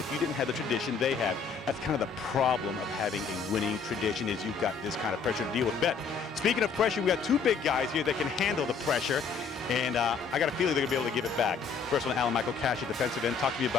you didn't have the tradition they have. That's kind of the problem of having a winning tradition, is you've got this kind of pressure to deal with. Bet. Speaking of pressure, we got 2 big guys here that can handle the pressure, and I got a feeling they're going to be able to give it back. First one, Alan Michael Cash at defensive end. Talk to me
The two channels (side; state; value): right; quieter; 5.5 dB